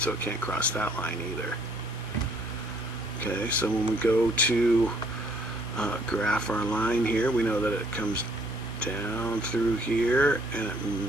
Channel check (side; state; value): both; normal; correlation 0.63